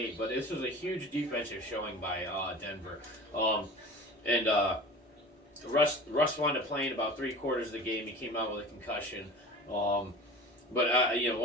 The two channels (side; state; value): both; normal; correlation 0.37